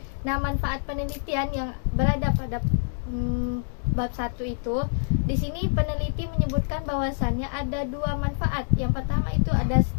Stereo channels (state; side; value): silent; right; digital silence